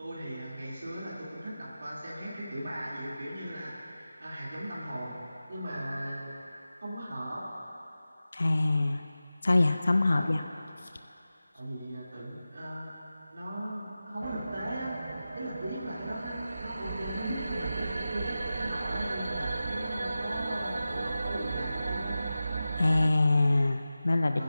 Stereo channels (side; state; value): both; inverted; correlation -0.94